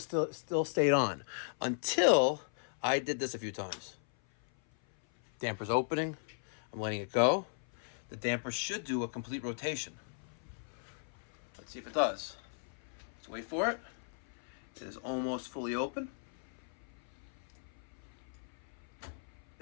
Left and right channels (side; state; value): right; silent; 53 dB below the other